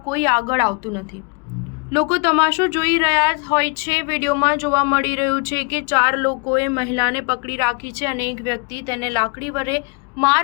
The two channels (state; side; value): quieter; right; 32.4 dB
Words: કોઈ આગળ આવતું નથી। લોકો તમાશો જોઈ રહ્યા હોય છે। વિડીયોમાં જોવા મળી રહ્યું છે કે 4 લોકોએ મહિલાને પકડી રાખી છે અને એક વ્યક્તિ તેને લાકડી વડે માર